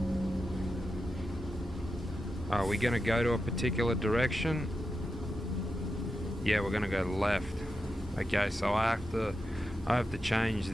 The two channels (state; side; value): normal; both; correlation 0.88